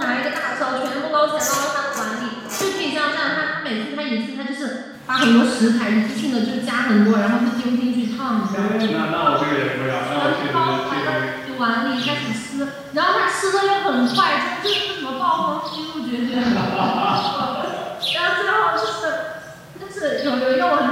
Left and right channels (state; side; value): identical; both; correlation 1.00